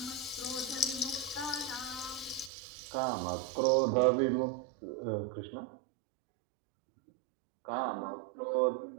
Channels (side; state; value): left; drops out; at 2.5 s